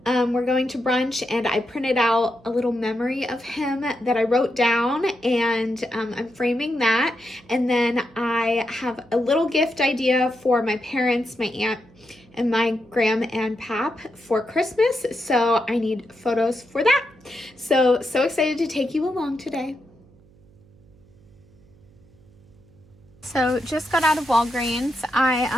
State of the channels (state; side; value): noise; right; hum, 28 dB below the sound